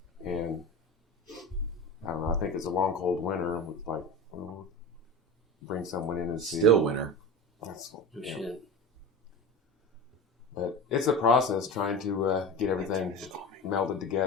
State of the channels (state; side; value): normal; both; correlation 0.29